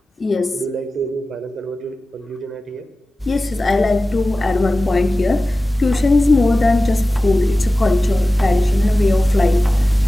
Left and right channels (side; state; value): both; normal; correlation 0.96